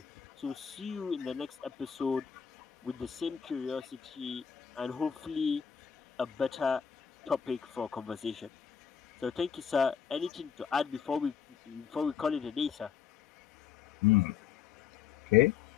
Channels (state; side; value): quieter; right; 7.6 dB